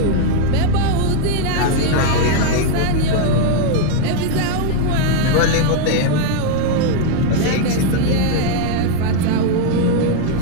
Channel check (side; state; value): both; different; correlation 0.00